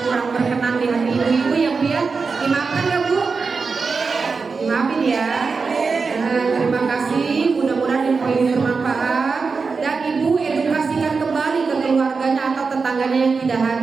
kurang berkenan di hati ibu-ibu ya Bu ya. Dimaafkan ya Bu. Dimaafin ya. Terima kasih. Mudah-mudahan info ini bermanfaat dan ibu edukasikan kembali ke keluarganya atau tetangganya yang tidak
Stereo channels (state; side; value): quieter; left; 4.8 dB